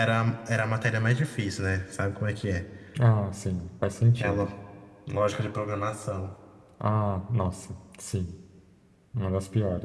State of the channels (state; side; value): identical; both; correlation 1.00